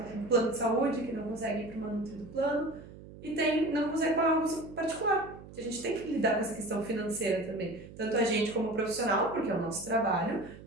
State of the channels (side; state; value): right; noise; hum, 17 dB below the sound